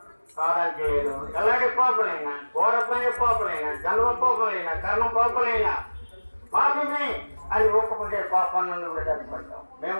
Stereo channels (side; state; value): both; inverted; correlation -1.00